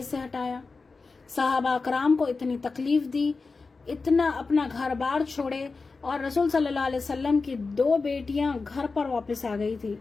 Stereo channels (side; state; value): right; quieter; 4.2 dB